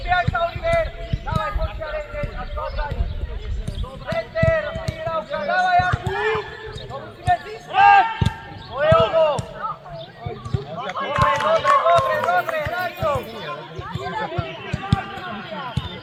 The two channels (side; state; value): both; identical; correlation 1.00